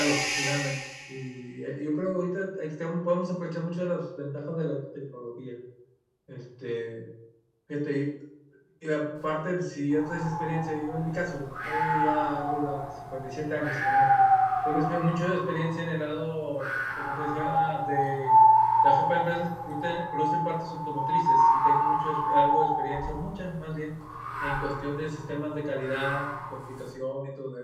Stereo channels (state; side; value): identical; both; correlation 1.00